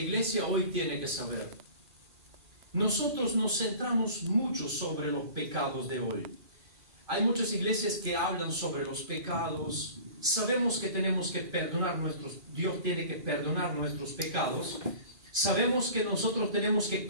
hoy tiene que saber. Nosotros nos centramos mucho sobre los pecados de hoy. Hay muchas iglesias que hablan sobre los pecados. Sabemos que tenemos que perdonar Dios tiene que perdonar nuestros pecados. Sabemos que nosotros tenemos que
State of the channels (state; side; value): late; left; 2.4 ms